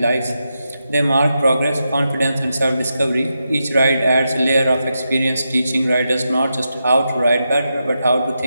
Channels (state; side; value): inverted; both; correlation -0.87